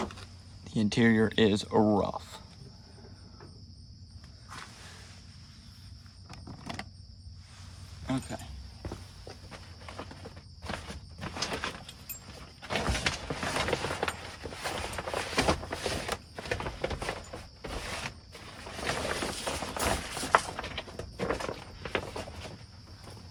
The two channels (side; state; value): both; identical; correlation 1.00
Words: The interior is rough. Okay.